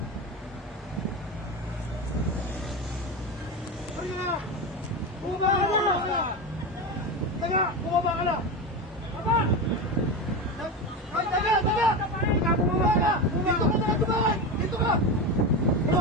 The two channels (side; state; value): both; normal; correlation 0.19